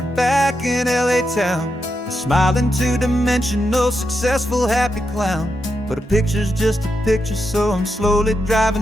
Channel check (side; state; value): both; normal; correlation 0.85